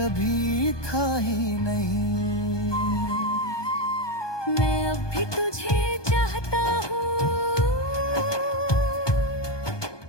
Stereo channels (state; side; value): late; right; 1.2 ms